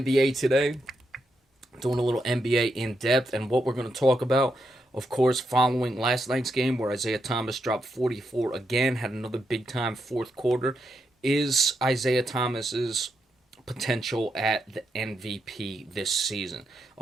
today, doing a little NBA in depth, and what we're going to talk about, of course, following last night's game where Isaiah Thomas dropped 44 again, had another big time fourth quarter, is Isaiah Thomas's potential at the MVP this season.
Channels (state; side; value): normal; both; correlation 0.83